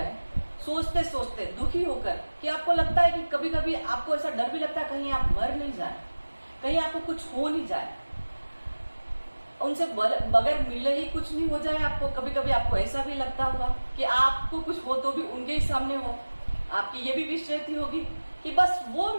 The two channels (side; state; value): both; inverted; correlation -1.00